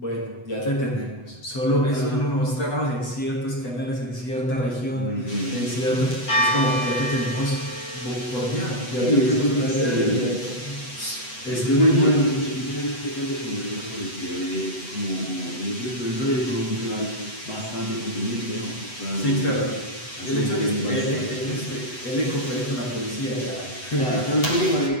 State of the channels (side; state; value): right; late; 8.0 ms